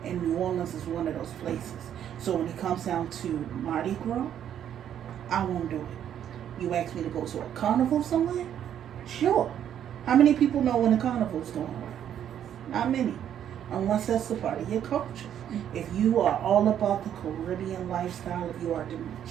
And New Orleans is one of those places. So when it comes down to Mardi Gras, I won't do it. You ask me to go to a carnival somewhere? Sure. How many people know when a carnival's going on? Not many. Unless that's the part of your culture. If you are all about the Caribbean lifestyle, if you are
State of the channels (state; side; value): quieter; left; 9.9 dB